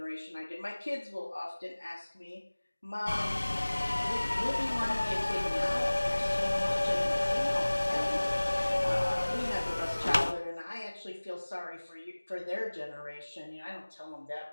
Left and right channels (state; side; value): inverted; both; correlation -1.00